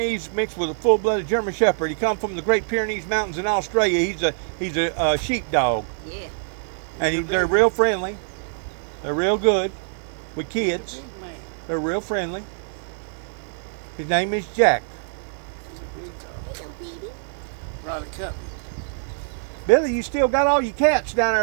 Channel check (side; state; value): left; silent; digital silence